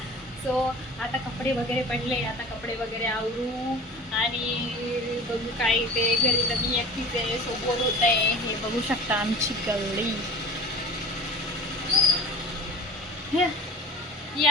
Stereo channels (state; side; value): normal; both; correlation 0.39